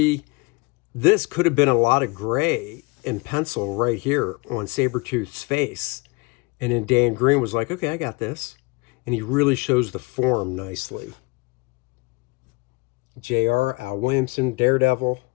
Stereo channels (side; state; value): right; quieter; 26.7 dB